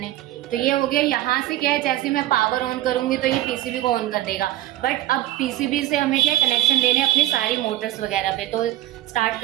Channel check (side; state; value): left; quieter; 15.1 dB